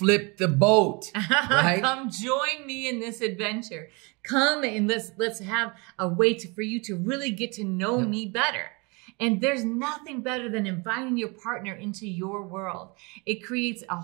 the boat, right? Come join me in this adventure. Come and let's have a way for you to really get to know me better. And there's nothing better than inviting your partner into your world. It creates a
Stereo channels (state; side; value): quieter; left; 29.2 dB